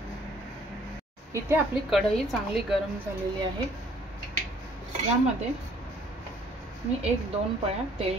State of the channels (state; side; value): normal; both; correlation 0.59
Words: इथे आपली कढई चांगली गरम झालेली आहे। यामध्ये मी 1-2 पळ्या